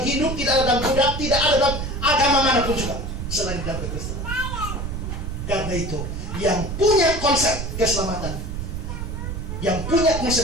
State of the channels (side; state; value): right; noise; rumble, 5 dB below the sound